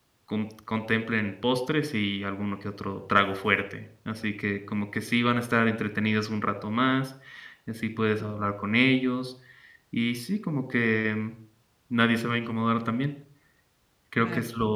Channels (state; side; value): identical; both; correlation 1.00